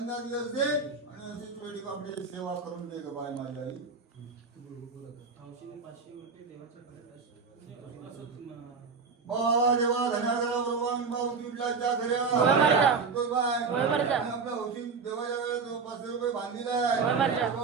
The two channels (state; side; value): quieter; left; 5.0 dB